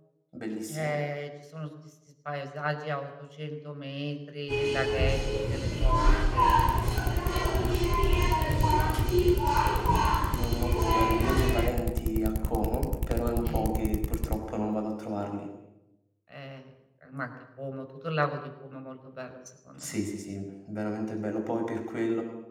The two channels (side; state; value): both; identical; correlation 1.00